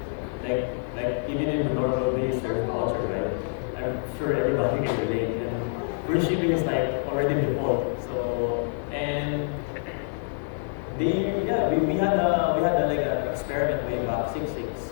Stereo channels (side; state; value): right; silent; 58 dB below the other